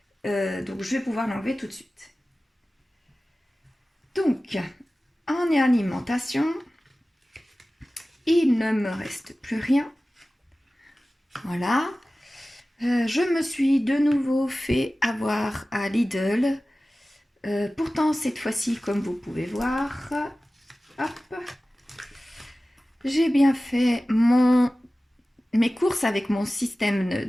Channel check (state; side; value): normal; both; correlation 0.96